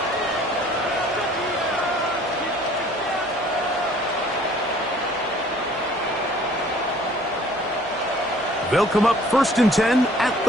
They'll come up 1st and 10 at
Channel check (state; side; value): noise; left; hum, 25 dB below the sound